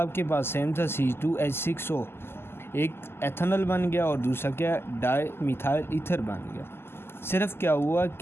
आपके पास सेम था, C2H6O, एक एथेनॉल बन गया और दूसरा क्या, डाई मिथाइल ईथर बन गया। सिर्फ क्या हुआ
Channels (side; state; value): right; late; 0.12 ms